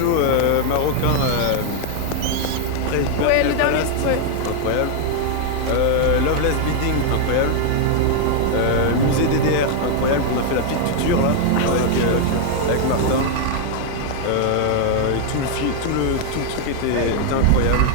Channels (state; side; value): different; both; correlation 0.00